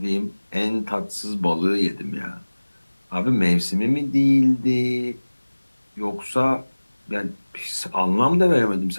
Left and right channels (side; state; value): both; inverted; correlation -1.00